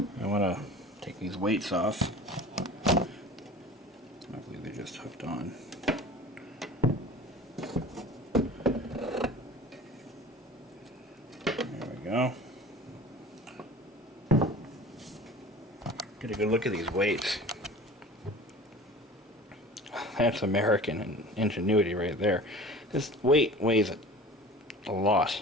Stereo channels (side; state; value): both; normal; correlation 0.40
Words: I want to take these weights off. I believe they're just hooked on. There we go. Get a good look at these weights. That's American ingenuity right there. This weight weighs a lot.